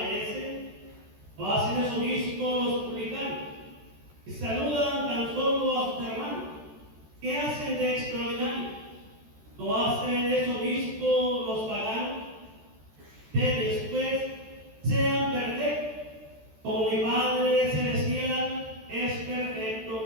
¿O hacen eso mismo los publicanos, que saludan tan solo a sus hermanos? ¿Qué hacen de extraordinario? ¿No hacen eso mismo los paganos? Ustedes pues sean perfectos, como mi Padre Celestial es perfecto.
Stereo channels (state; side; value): late; left; 14 ms